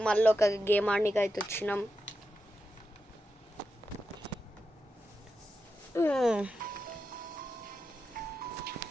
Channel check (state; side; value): normal; both; correlation 0.88